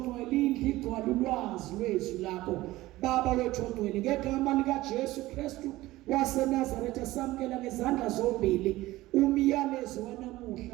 indlu igcwala ulwazi lwezwi lakho. Baba wethu ngcwele ngegama likaJesu Kristu waseNazaretha samkela ngezandla zombili umyalezo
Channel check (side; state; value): left; quieter; 17.6 dB